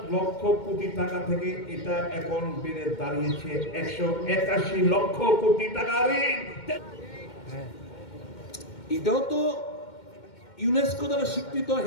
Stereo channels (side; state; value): right; late; 2.1 ms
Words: লক্ষ কোটি টাকা থেকে এটা এখন বেড়ে দাঁড়িয়েছে 181 লক্ষ কোটি টাকা ঋণ। এটাও তো ইউনেস্কো দ্বারা স্বীকৃত